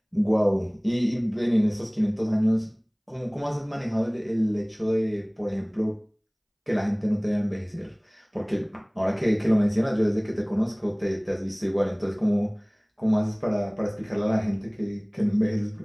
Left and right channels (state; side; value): identical; both; correlation 1.00